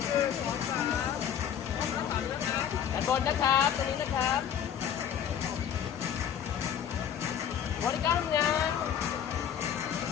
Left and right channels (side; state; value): right; quieter; 8.9 dB